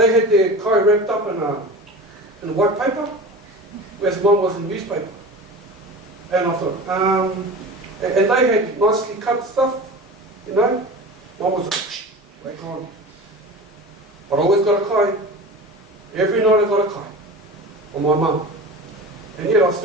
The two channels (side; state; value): both; normal; correlation 0.33